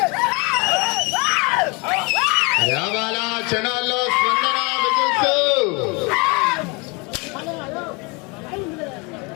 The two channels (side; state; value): right; quieter; 29.2 dB